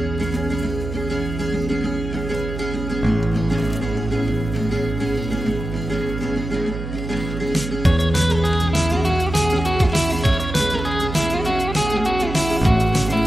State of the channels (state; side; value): noise; right; hum, 6 dB below the sound